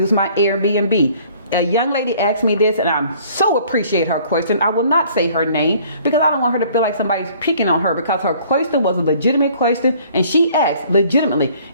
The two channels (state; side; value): inverted; both; correlation -0.56